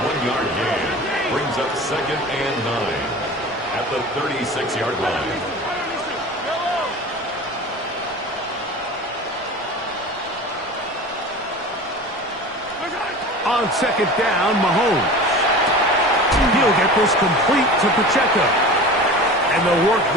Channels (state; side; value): normal; both; correlation 0.36